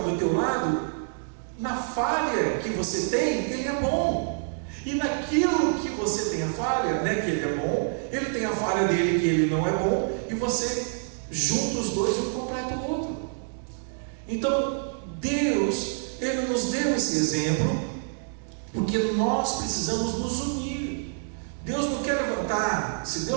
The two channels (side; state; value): left; silent; digital silence